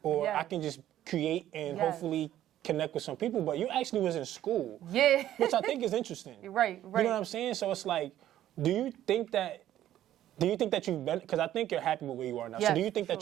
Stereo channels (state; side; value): quieter; left; 12.5 dB